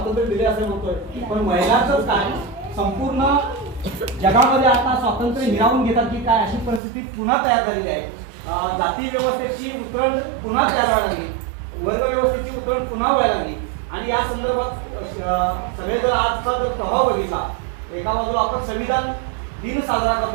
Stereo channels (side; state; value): left; drops out; at 6.8 s